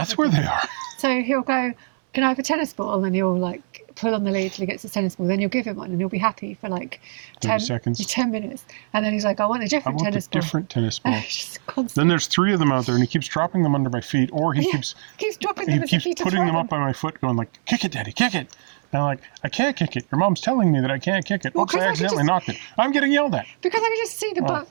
where they are. So he'll go, "Can I have a tennis ball?" And you'll like pull on the lead till he gets the tennis ball. Then you'll give him one, and he'll be happy for like 30 seconds. 10 minutes. And then he's like, "I want a different tennis ball." Different tennis ball. Just constant. Then there's 3 of them out there, and he keeps dropping them under my feet, or he keeps dropping them. He keeps putting them up by my foot, going like, "Kick it, Daddy, kick it." And I'm like, "I can't kick it. Your mom's telling me that I can't kick it." Oops, I accidentally knocked it. I'm getting yelled at. Because I can just see the ball.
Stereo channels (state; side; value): silent; left; 64 dB below the other